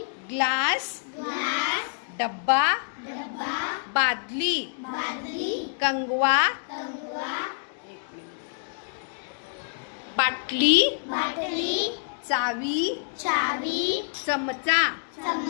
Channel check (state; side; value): silent; right; digital silence